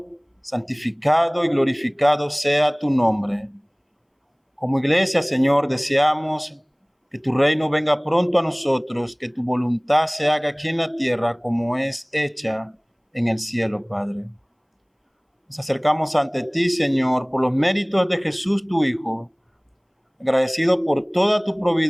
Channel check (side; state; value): both; identical; correlation 1.00